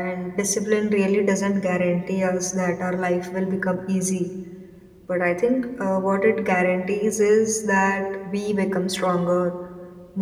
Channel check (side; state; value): both; identical; correlation 1.00